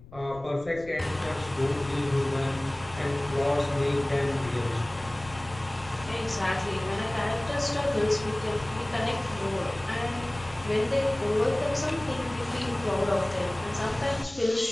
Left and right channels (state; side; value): noise; left; rumble, 18 dB below the sound